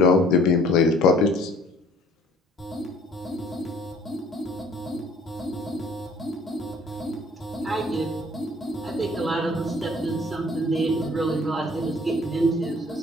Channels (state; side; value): normal; both; correlation 0.54